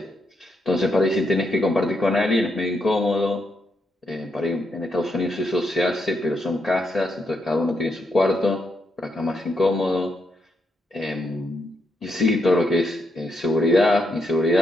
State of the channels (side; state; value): both; normal; correlation 0.80